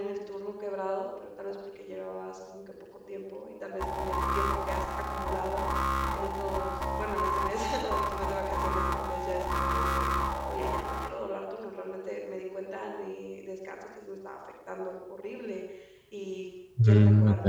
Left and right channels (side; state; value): both; identical; correlation 1.00